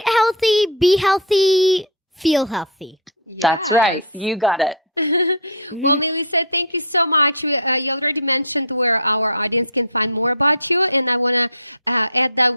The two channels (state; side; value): normal; both; correlation -0.08